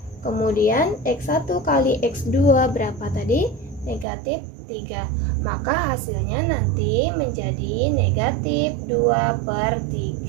Kemudian X1 kali X2 berapa tadi? Negatif 3. Maka hasilnya nanti menjadi negatif 2 per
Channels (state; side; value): drops out; left; at 4.0 s